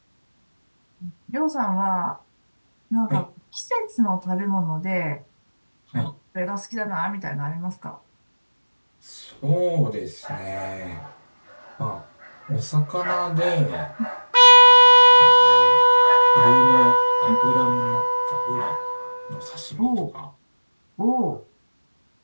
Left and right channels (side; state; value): both; inverted; correlation -1.00